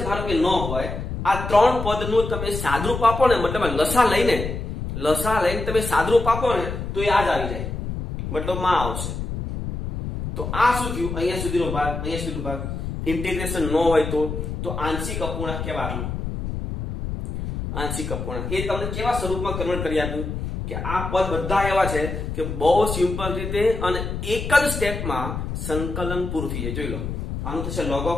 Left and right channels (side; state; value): left; noise; rumble, 5 dB below the sound